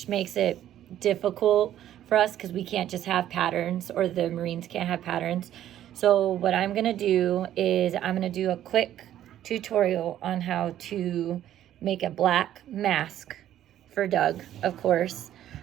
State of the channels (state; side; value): quieter; left; 11.8 dB